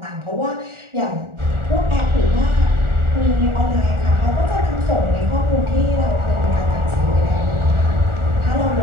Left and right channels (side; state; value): left; late; 1.4 ms